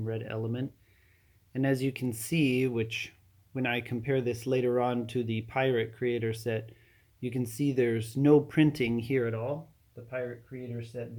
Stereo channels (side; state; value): both; identical; correlation 1.00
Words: red element. And as you can see, which when I compare this later on to the Pirate Creator set, you can see there's no printing here at all. The Pirate Creator set,